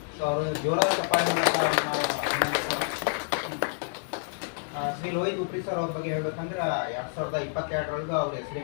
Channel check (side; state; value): right; silent; digital silence